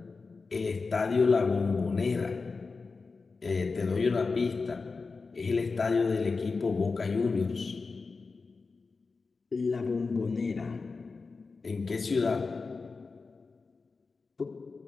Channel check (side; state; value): right; quieter; 4.3 dB